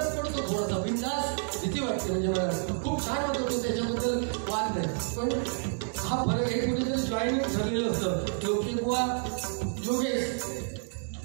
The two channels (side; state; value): left; silent; digital silence